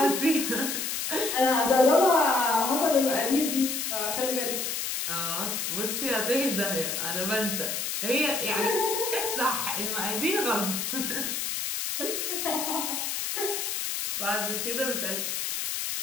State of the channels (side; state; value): left; noise; hiss, 2 dB below the sound